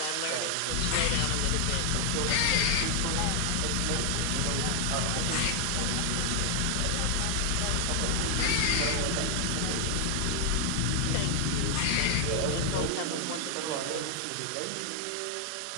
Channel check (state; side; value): different; both; correlation 0.00